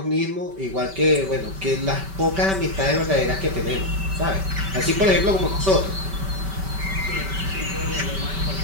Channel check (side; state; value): left; late; 5.2 ms